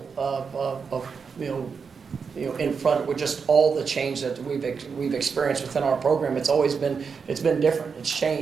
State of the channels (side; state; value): left; quieter; 5.7 dB